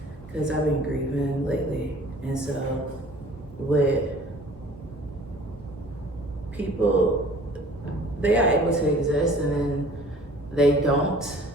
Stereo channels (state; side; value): normal; both; correlation 0.50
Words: because I've been grieving lately, and so with people, they are able to exist and then they don't,